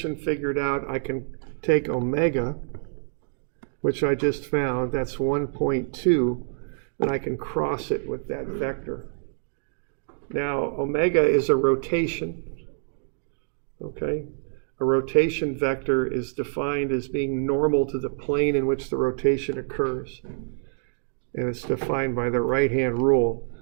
figured out, I can take omega, which I just found, that's 1.2, and I can cross it with that vector. Now, omega is a rotation, okay? A rotation vector is defined as being normal to the plane in which the rotation occurs. And it's defined by the right-hand rule.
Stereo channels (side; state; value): left; silent; digital silence